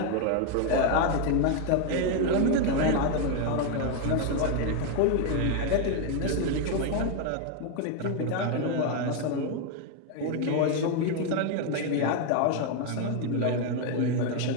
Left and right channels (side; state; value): both; different; correlation 0.01